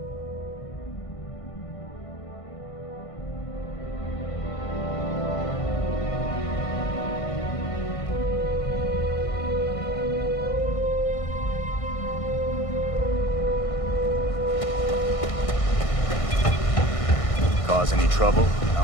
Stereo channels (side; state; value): right; late; 1.6 ms